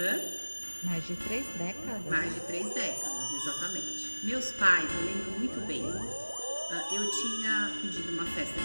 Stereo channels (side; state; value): both; inverted; correlation -1.00